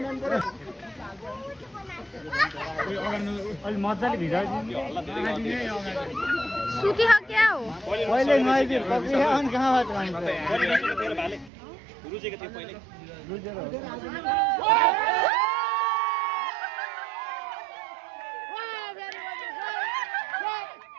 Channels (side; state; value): left; drops out; at 11.5 s